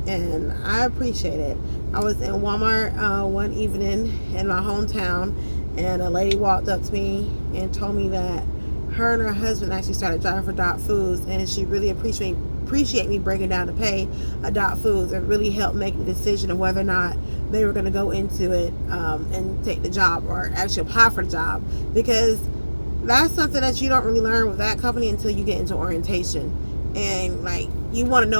and I appreciate it. I was in Walmart one evening in my hometown, and a lady walked up to me and told me that her and her husband actually started driving for Dot Foods, and she really appreciate me breaking down to pay a Dot Foods and really helped make the decision of whether or not they were going to go into it and take the job or actually apply for the job, because that's something that you don't really learn with that company until you get into orientation. And like, you want to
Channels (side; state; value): both; inverted; correlation -1.00